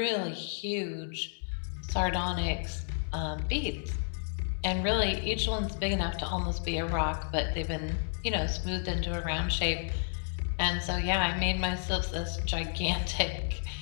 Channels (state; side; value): silent; right; digital silence